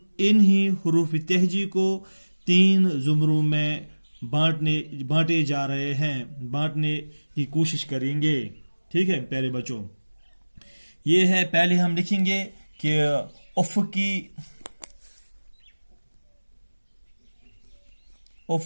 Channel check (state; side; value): inverted; both; correlation -1.00